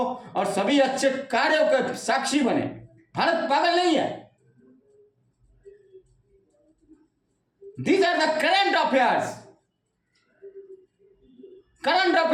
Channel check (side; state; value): both; identical; correlation 1.00